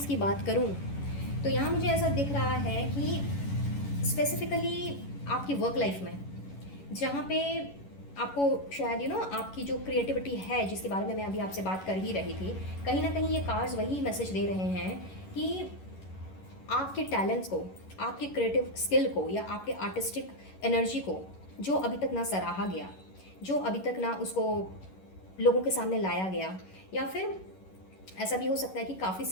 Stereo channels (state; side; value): late; right; 11 ms